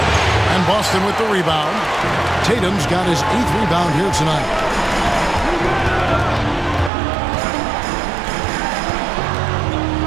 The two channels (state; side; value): drops out; left; at 6.9 s